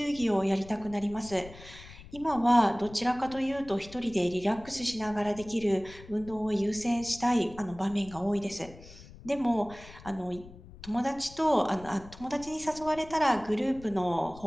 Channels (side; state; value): left; noise; rumble, 18 dB below the sound